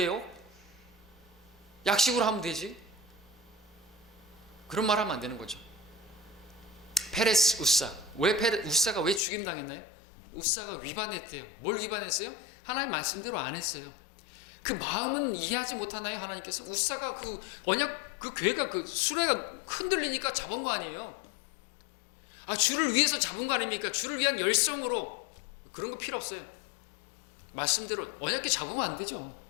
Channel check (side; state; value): right; drops out; at 9.2 s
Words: 약식으로 하면 되지. 그런 말 하면 안 되는 거죠. 페레스 우사. 우사가 왜 죽임당했나요? 우사가 위반했대요. 뭘 위반했어요? 하나님 말씀대로 안 했어요. 그 마음은 이해하지 못하나요? 하나님께서 우사가 그 언약 그 교회가 그 수레가 흔들리니까 잡은 거 아니에요? 주를 위해서 잡은 거 아닙니까? 주를 위한 열성으로. 그런 거 필요 없어요. 말씀대로 언약궤 잡으면 안 되죠.